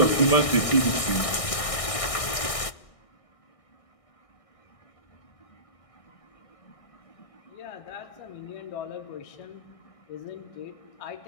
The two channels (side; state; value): right; late; 1.6 ms